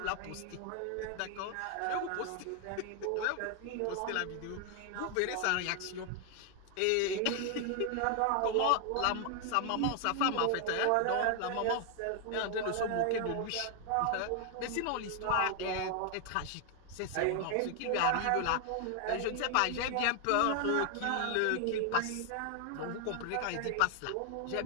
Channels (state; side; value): different; both; correlation 0.00